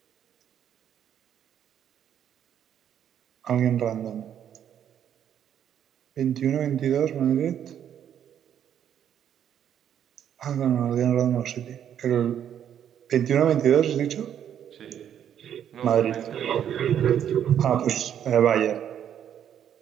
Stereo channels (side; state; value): left; quieter; 9.5 dB